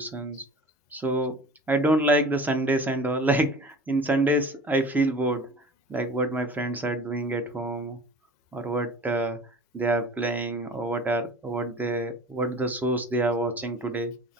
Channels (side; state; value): both; normal; correlation 0.41